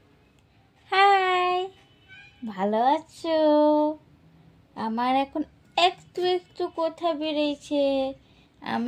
হাই, ভালো আছো? আমার এখন একটু একটু কথা বেরিয়েছে।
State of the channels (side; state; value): both; identical; correlation 1.00